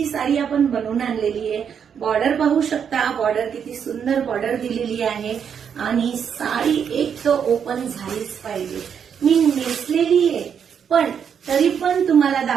साडी आपण बनवून आणलेली आहे. बॉर्डर पाहू शकता, बॉर्डर किती सुंदर बॉर्डर दिलेली आहे आणि साडी एक तर ओपन झालीच पाहिजे. मी नेसलेली आहे पण तरी पण तुम्हाला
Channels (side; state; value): left; quieter; 7.6 dB